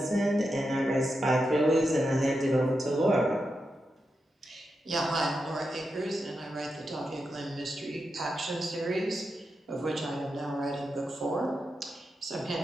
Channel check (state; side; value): normal; both; correlation 0.87